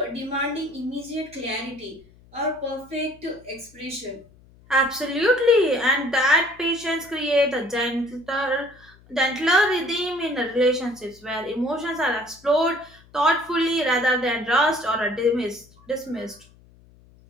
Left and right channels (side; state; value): left; noise; hum, 27 dB below the sound